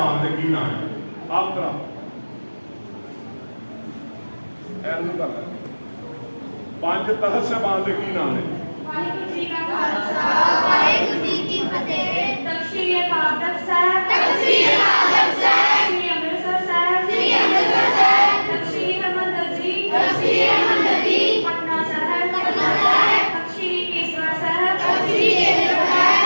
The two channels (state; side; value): inverted; both; correlation -1.00